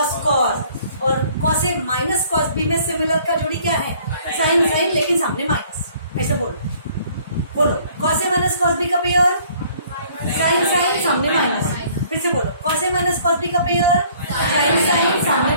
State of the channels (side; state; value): both; inverted; correlation -0.58